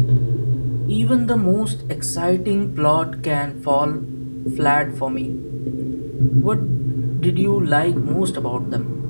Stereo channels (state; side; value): inverted; both; correlation -1.00